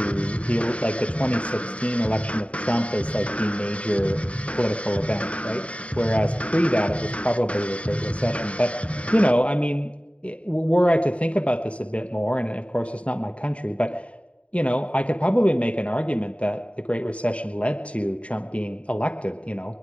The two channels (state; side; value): late; right; 0.063 ms